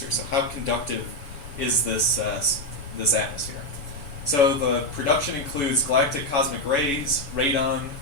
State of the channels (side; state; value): right; late; 7.0 ms